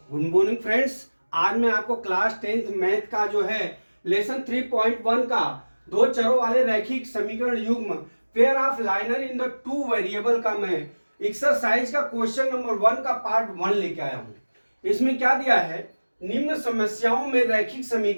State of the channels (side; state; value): both; inverted; correlation -1.00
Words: Good morning friends. आज मैं आपको क्लास 10th मैथ का जो है लेसन 3.1 का दो चरों वाले रैखिक समीकरण युग्म pair of liner in the two variable का मैं एक्सरसाइज का क्वेश्चन नंबर 1 का पार्ट 1 लेके आया हूं। इसमें क्या दिया है, निम्न समस्याओं में रैखिक